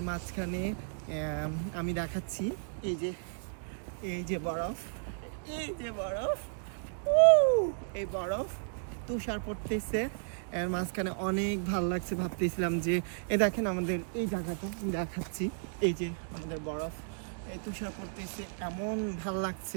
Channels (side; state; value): left; silent; digital silence